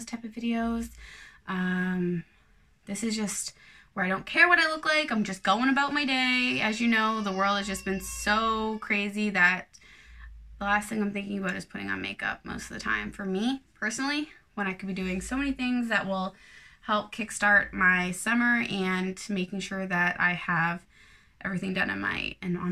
type of videos. This is just where I don't care what I look like. I'm just going about my day. As you know, the world has just been so crazy that the last thing I'm thinking about is putting on makeup most of the time. For me, personally, when I could be doing so many things that will help kickstart my summer and making sure that I have everything done on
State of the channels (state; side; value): identical; both; correlation 1.00